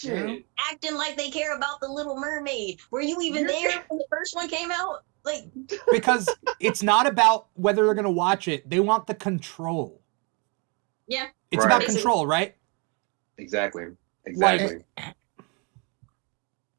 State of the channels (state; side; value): quieter; left; 32.8 dB